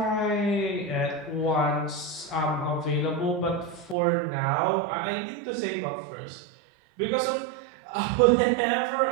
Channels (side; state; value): left; drops out; at 4.0 s